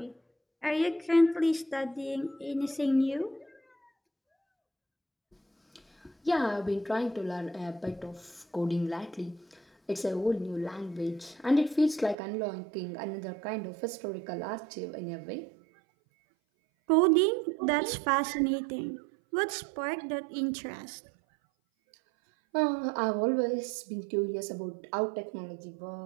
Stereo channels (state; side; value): drops out; left; at 12.2 s